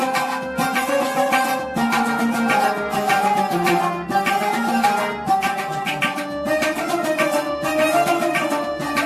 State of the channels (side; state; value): both; identical; correlation 1.00